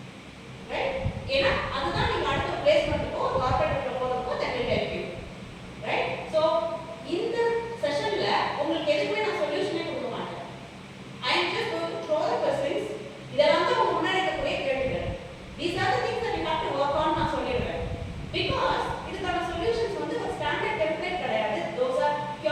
உங்களுக்கு எதுக்குமே நான் சொல்யூஷனே கொடுக்க மாட்டேன். I am just going to throw the questions. இதெல்லாம் தான் உங்க முன்னாடி இருக்கக்கூடிய கேள்விகள். These are the things that you have to work on நான் சொல்லிடுறேன். Because இதுக்கான solutions வந்து ஒரு standard template கிடையாது. Those are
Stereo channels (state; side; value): identical; both; correlation 1.00